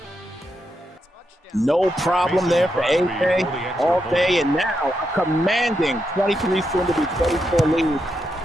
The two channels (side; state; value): both; normal; correlation 0.83